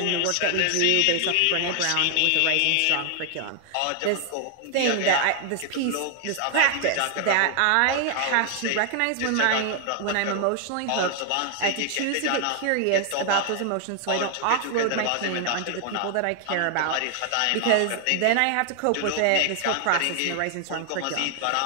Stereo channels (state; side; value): different; both; correlation 0.00